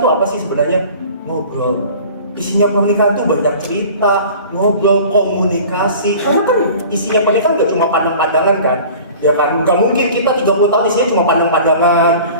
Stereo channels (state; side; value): inverted; both; correlation -0.44